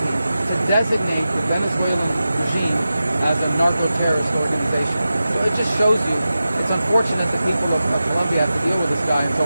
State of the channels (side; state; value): both; inverted; correlation -0.93